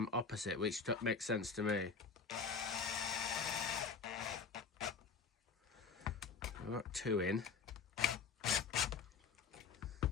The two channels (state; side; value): quieter; right; 5.5 dB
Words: opposite, which makes sense to me. I've got 2 in.